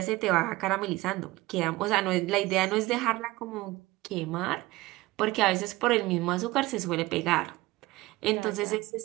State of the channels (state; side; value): quieter; left; 19.5 dB